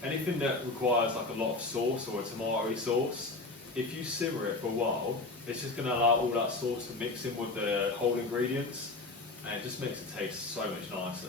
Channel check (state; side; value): quieter; right; 3.3 dB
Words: anything that requires like a lot of sauce or a tomato sauce. If you simmer it for a while, it's just going to allow all that sauce to mix in with the whole ingredients, and it just makes it taste so much